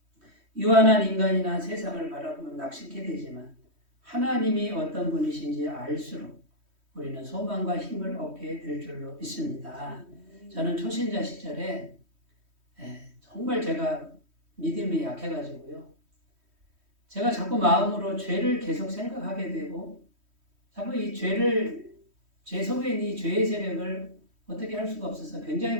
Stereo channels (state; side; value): late; left; 3.1 ms